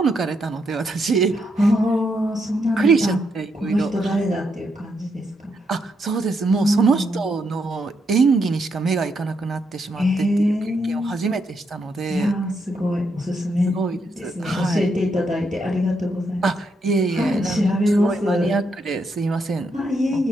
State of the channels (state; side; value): normal; both; correlation 0.79